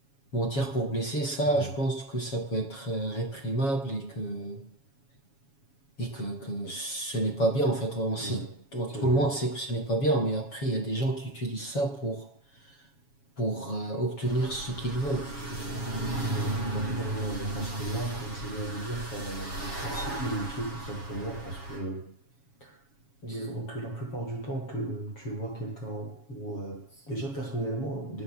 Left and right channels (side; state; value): right; late; 7.2 ms